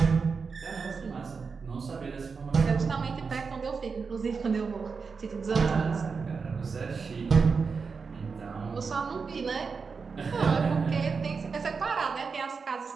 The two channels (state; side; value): quieter; left; 5.1 dB